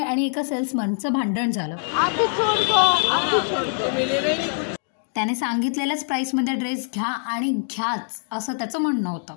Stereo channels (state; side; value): silent; right; digital silence